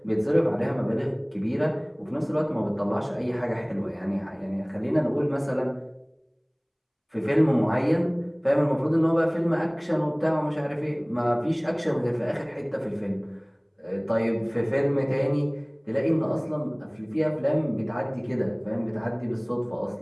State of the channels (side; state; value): both; identical; correlation 1.00